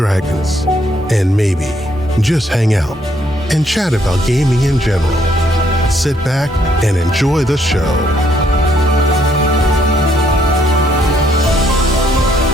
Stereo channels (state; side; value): normal; both; correlation 0.70